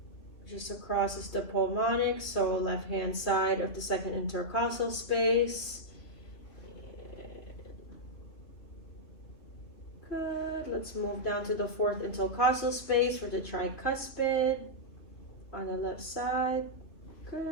Just across is the pulmonic, so left hand side of the 2nd intercostal space. Good. Let's move down to the 4th intercostal space for the tricuspid on the left side.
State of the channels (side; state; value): right; late; 3.0 ms